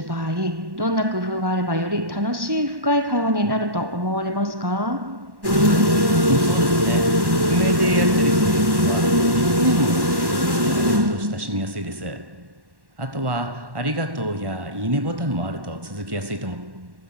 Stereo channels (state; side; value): late; left; 1.1 ms